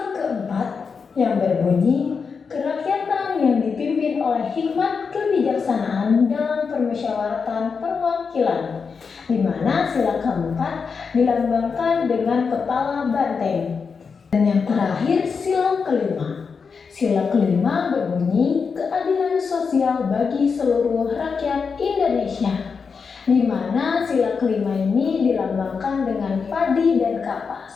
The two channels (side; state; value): right; quieter; 5.5 dB